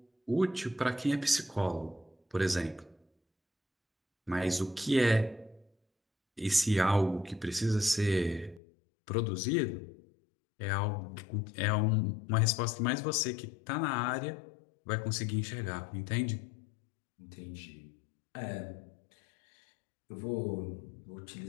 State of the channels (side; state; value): right; drops out; at 8.6 s